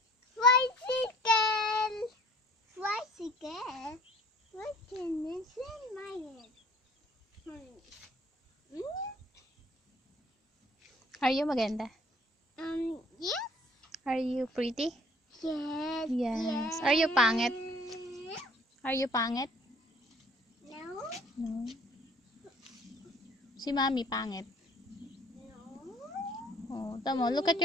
Tricycle. Tricycle. What can this in my head? Are you maganda? Yes. Are you pretty? Yes. Yes. Are you pangit? Are you pangit? No. No. Si Mami pangit. No. Oh, tamo. Look at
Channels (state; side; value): normal; both; correlation 0.54